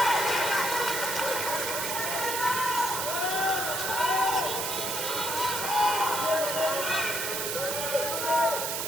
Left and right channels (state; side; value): noise; right; hiss, 2 dB below the sound